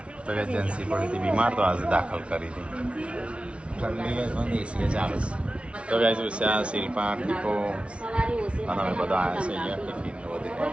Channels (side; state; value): left; late; 0.060 ms